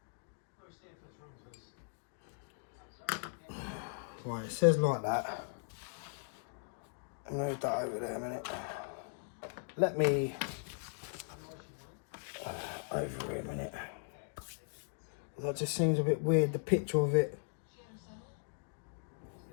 Right, it says like that. Move that over there a minute. Let me over here a minute. That just seems a bit weird, the picture of it.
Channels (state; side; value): silent; right; digital silence